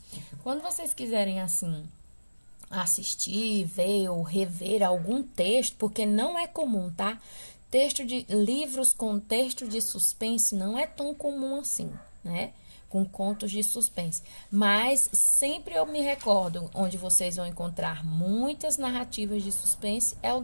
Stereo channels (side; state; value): both; inverted; correlation -1.00